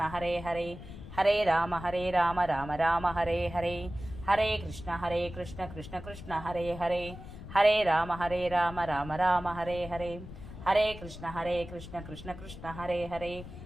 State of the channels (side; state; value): left; noise; rumble, 13 dB below the sound